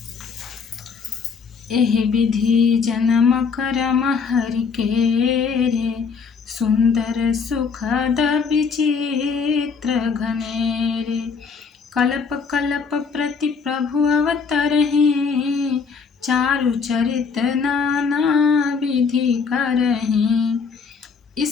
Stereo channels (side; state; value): right; quieter; 5.5 dB